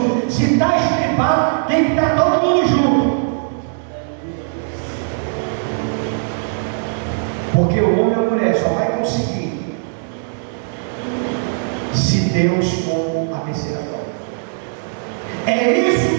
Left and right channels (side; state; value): left; silent; digital silence